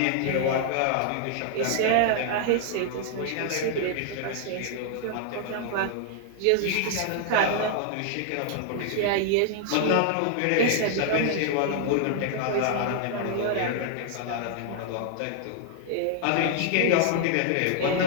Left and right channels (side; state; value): both; different; correlation -0.01